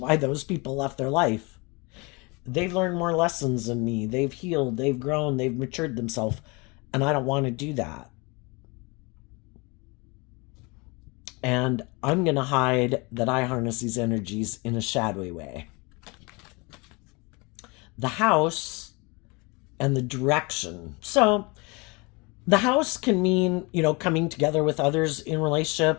those people left their life. They've learned more lessons than me. They've healed, they've grown, they've matured themselves. And I don't want to do that. And I'm going to hide that I harness these energies in a shadowy way. The house and the direction. So the house can mean, coming together with others in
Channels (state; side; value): quieter; right; 27.8 dB